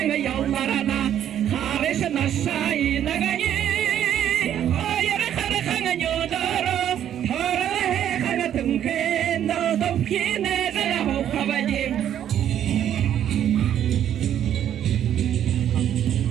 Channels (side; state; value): left; quieter; 10.3 dB